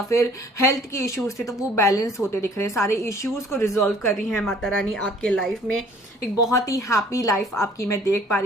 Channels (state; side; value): normal; both; correlation 0.55